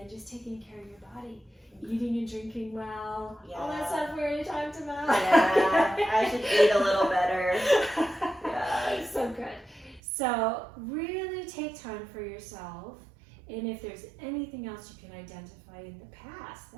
just taking care of your body. Eating and drinking well. All that stuff we already talked about. Yeah, I should eat a little better. Yeah. So good. So really take time for yourself. And if there's anything else you can identify in the past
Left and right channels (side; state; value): left; drops out; at 10.0 s